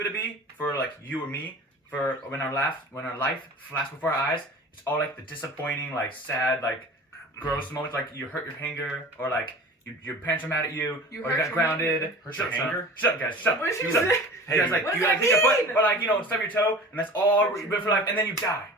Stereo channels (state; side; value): normal; both; correlation 0.39